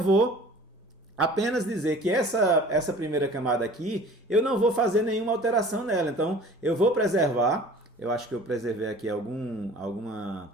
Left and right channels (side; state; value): both; normal; correlation 0.46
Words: apenas dizer que essa primeira camada aqui, eu não vou fazer nenhuma alteração nela. Então, eu vou preservar. Eu acho que eu preservei aqui